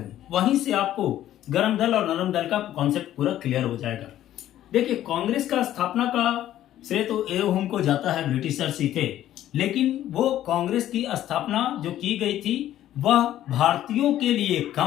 वहीं से आपको गर्म दल और नरम दल का कॉन्सेप्ट पूरा क्लियर हो जाएगा। देखिए, कांग्रेस का स्थापना का श्रेय तो एओ हुम को जाता है, ब्रिटिशर्स ही थे, लेकिन वो कांग्रेस की स्थापना जो की गई थी वह भारतीयों के लिए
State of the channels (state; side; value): quieter; right; 12.6 dB